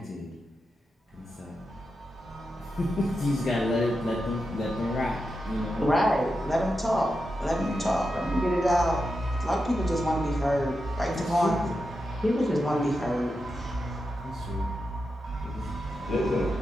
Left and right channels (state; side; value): normal; both; correlation 0.88